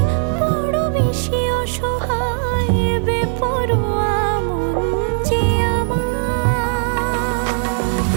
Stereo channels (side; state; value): left; silent; 64 dB below the other